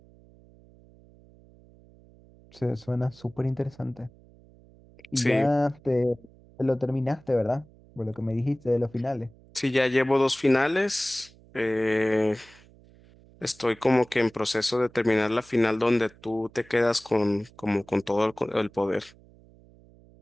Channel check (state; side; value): noise; right; hum, 26 dB below the sound